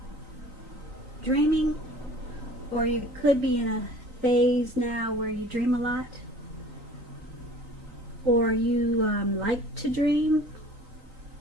dreaming, or you could be in a phase now where you dream a lot, or you like to dream.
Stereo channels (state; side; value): late; left; 3.9 ms